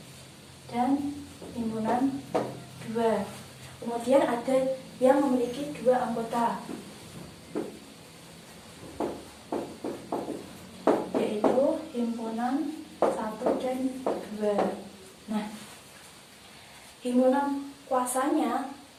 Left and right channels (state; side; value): identical; both; correlation 1.00